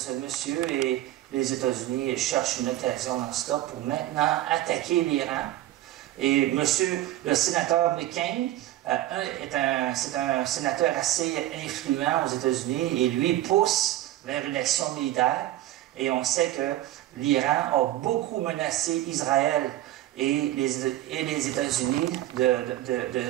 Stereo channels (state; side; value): quieter; left; 14.5 dB